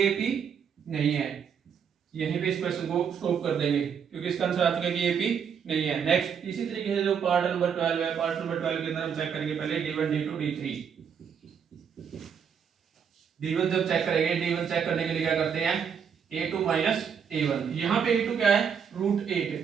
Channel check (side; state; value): left; quieter; 7.2 dB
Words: AP नहीं है। यहीं पे इस क्वेश्चन को स्टॉप कर देंगे क्योंकि इसका आंसर आ चुका है कि AP नहीं है। नेक्स्ट इसी तरीके से जो पार्ट नंबर 12 है, पार्ट नंबर 12 के अंदर हम चेक करेंगे पहले D1 D2 D3। D1 जब चेक करेंगे, D1 चेक करने के लिए क्या करते हैं A2 माइनस A1। यहाँ पे A2 क्या है रूट